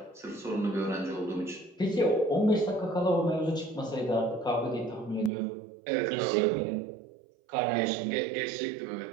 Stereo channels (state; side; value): drops out; left; at 5.3 s